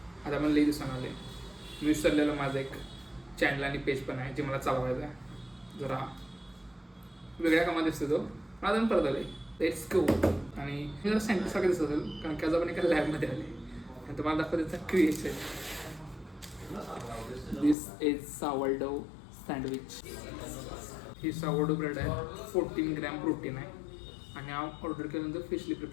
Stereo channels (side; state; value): right; drops out; at 17.8 s